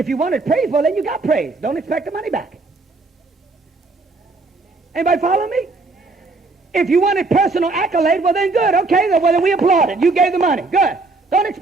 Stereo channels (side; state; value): left; quieter; 3.6 dB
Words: you wanted praise, well, then you got praise. Don't expect the money back. Anybody follow me? If you wanted personal accolade, well, then good. Okay, well, then we applaud it. You gave the money. Good. Don't